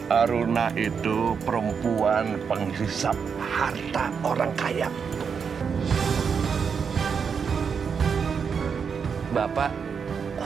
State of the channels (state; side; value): quieter; left; 6.3 dB